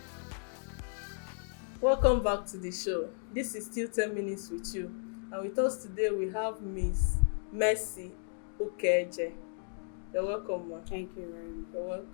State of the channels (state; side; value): silent; right; digital silence